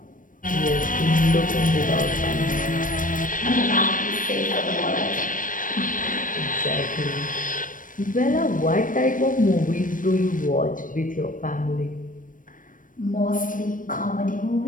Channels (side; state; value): right; late; 0.38 ms